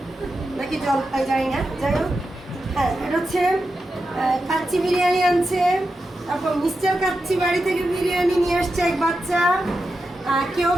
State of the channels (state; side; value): normal; both; correlation 0.89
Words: নাকি জলপাই জানি না, যাই হোক। হ্যাঁ, এটা হচ্ছে কাচ্চি বিরিয়ানি আনছে। তারপর মিস্টার কাচ্চি বাড়ি থেকে বিরিয়ানি নিয়ে আসছে এক বাচ্চা। কেউ